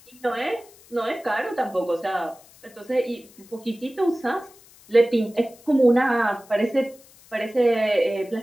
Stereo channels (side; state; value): left; noise; hiss, 25 dB below the sound